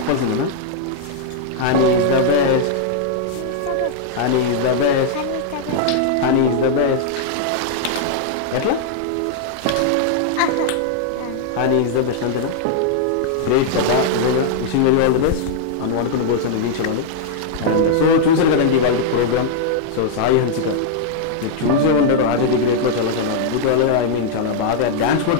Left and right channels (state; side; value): different; both; correlation -0.01